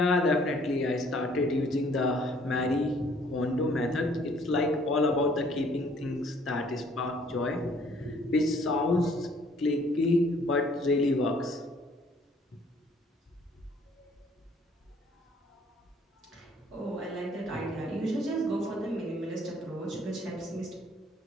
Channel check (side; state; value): both; normal; correlation 0.60